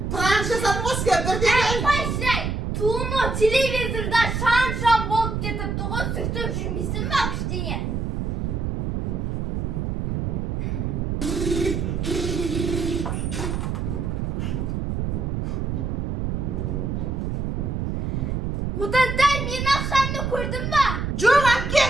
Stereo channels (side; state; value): right; noise; rumble, 2 dB below the sound